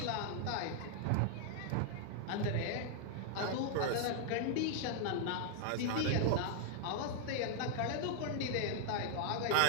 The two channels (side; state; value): both; different; correlation 0.00